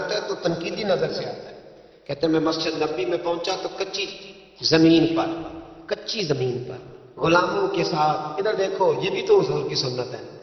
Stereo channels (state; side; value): identical; both; correlation 1.00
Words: ہے تو تنقیدی نظر سے آتا ہے. کہتے ہیں میں مسجد نبی میں پہنچا تو کچی زمین پر غلاموں کے ساتھ، ادھر دیکھو یہ بھی تو حضور کی سنت ہے